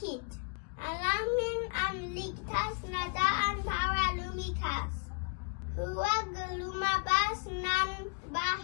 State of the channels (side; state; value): right; quieter; 38.2 dB